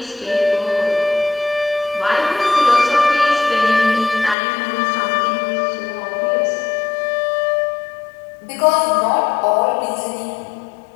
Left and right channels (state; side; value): drops out; right; at 4.4 s